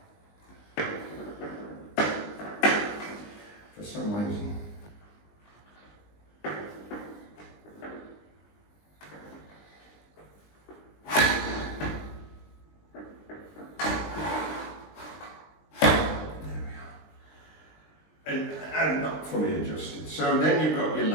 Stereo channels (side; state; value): right; late; 20 ms